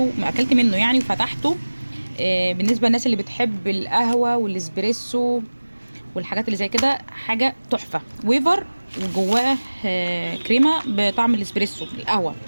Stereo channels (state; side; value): inverted; both; correlation -1.00